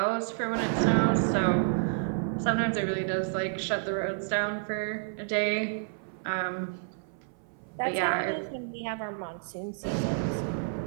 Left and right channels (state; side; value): silent; left; 58 dB below the other